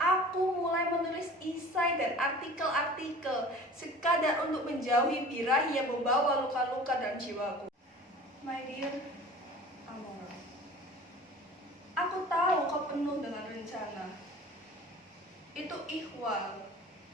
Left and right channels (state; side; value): normal; both; correlation 0.42